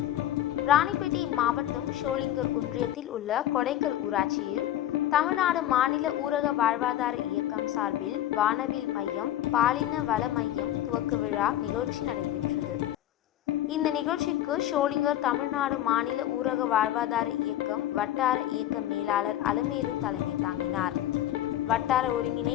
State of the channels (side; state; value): right; quieter; 12.6 dB